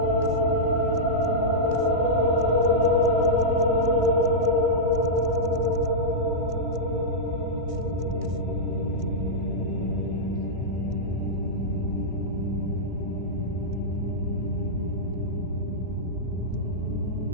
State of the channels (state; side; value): late; left; 1.6 ms